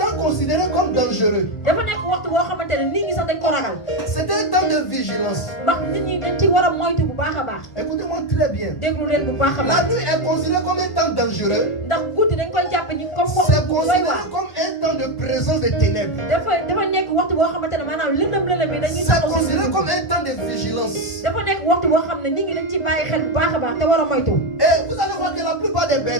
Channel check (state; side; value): late; right; 1.4 ms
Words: temps considéré comme dangereux. dafa nekk waxtu boo xamante ne nit ñi sax dañ ko ragal C'était un temps de vigilance. ndax nit ñi dañ ci war a moytu bu baax a baax Écoutez-moi très bien. déglu leen bu baax a La baax nuit est considérée comme un temps dangereux. ndax guddi dañ koy jàpp ñi comme C'est waxtu bu doy considéré waar comme un temps de présence des ténèbres. dafa nekk waxtu boo xamante ne maanaam lëndëm lëndëm yi dañuy C'est taxaw si considéré guddi. comme un temps de vigilance. dafa nekk waxtu boo xam ne nit ñi dañ ci bàyyi xel bu baax a baax te war a moytu Et vous allez voir que la plupart des